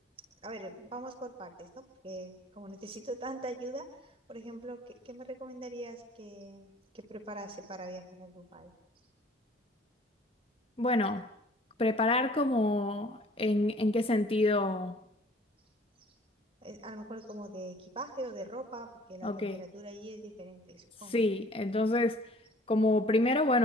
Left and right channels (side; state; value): both; normal; correlation 0.53